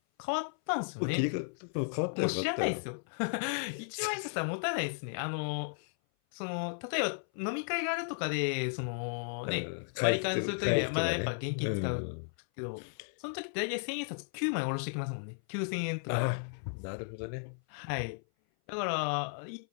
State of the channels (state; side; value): silent; right; 55 dB below the other